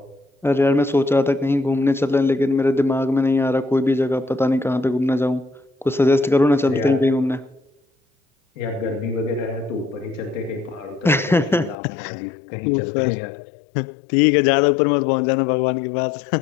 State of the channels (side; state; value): right; drops out; at 11.8 s